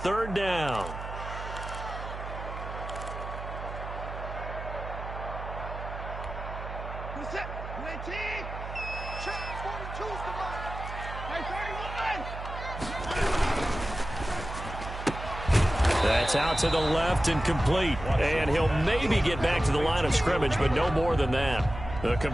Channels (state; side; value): noise; right; hum, 9 dB below the sound